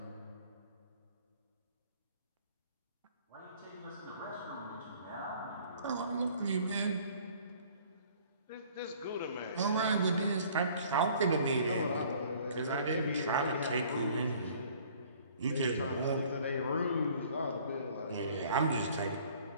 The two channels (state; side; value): inverted; both; correlation -0.54